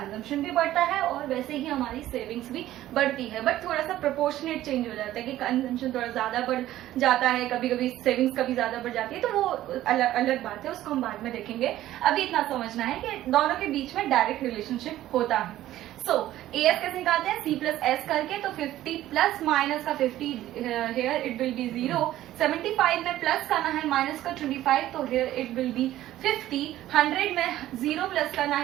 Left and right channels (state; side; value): quieter; left; 14.0 dB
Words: भी बढ़ता है और वैसे ही हमारी सेविंग्स भी बढ़ती है। बट थोड़ा सा प्रोपोर्शनेट चेंज हो जाता है कि कंजम्पशन थोड़ा ज्यादा बढ़ जाता है, कभी कभी सेविंग्स कभी ज्यादा बढ़ जाती है, तो वो अलग अलग बात है, उसको हम बाद में देखेंगे। अभी इतना समझना है कि दोनों के बीच में डायरेक्ट रिलेशनशिप होता है। सो AS कैसे निकालते हैं? C प्लस एस करके। तो 50 प्लस माइनस का 50 हेयर इट विल बी 0। 75 में प्लस करना है माइनस का 25, तो हेयर इट विल बी 50। 100 में 0 प्लस करना